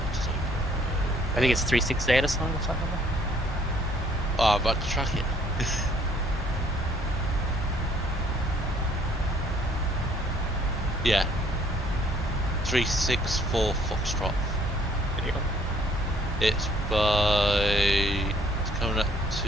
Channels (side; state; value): both; normal; correlation 0.62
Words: Design Bureau. I think it's 368 or something like that. Oh, I'm about to track it. Yeah. 364 Foxtrot. There you go. It's coming up